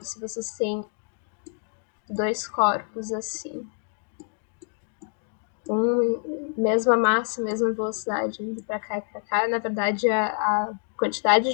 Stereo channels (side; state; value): right; silent; digital silence